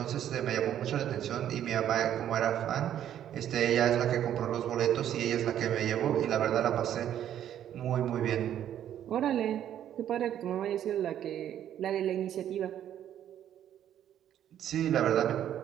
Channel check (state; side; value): quieter; left; 10.7 dB